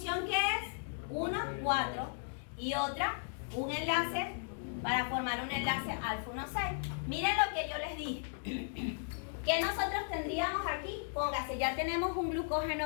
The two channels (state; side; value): silent; right; digital silence